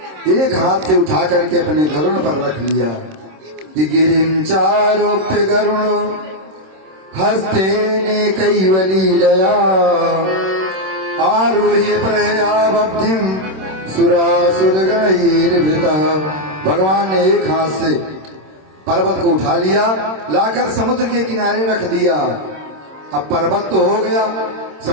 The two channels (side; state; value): left; late; 26 ms